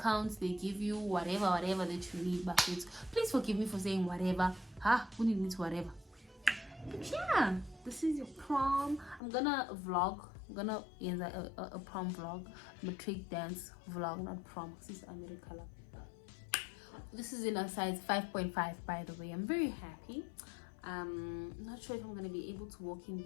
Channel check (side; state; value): right; drops out; at 9.2 s